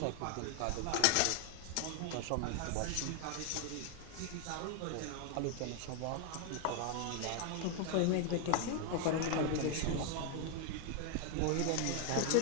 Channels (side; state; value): both; different; correlation 0.00